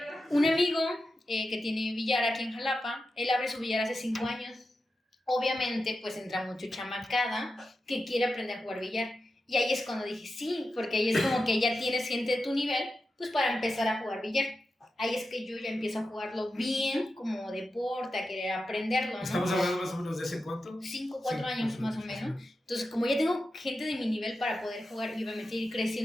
Un amigo que tiene billar aquí en Jalapa, él abre su billar hace 5 años. Obviamente, pues entra mucho chamacada que quiere aprender a jugar billar. Y ahí es cuando dije, sí, porque ahí es como que ya tienes gente de tu nivel, pues para empezar a jugar billar. Ahí es que yo ya empiezo a jugarlo bien, como deporte, a querer aprenderlo, ¿no? ¿Estamos hablando más o menos de hace cuánto? 4 años más o menos. Entonces, como ya tengo gente de mi nivel para poder jugar y obviamente ir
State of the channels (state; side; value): normal; both; correlation 0.90